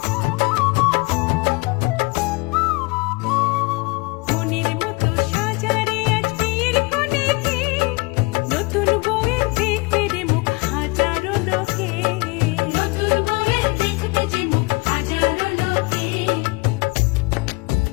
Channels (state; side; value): quieter; right; 26.5 dB